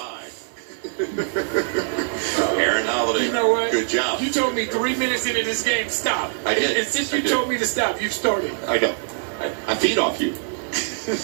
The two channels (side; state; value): left; silent; 64 dB below the other